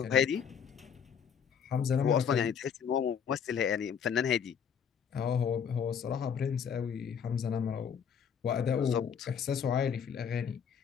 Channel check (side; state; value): right; quieter; 7.4 dB